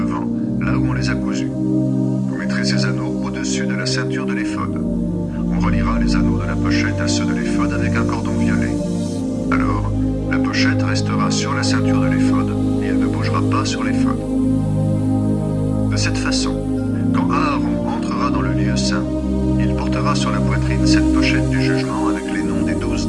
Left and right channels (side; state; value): both; identical; correlation 1.00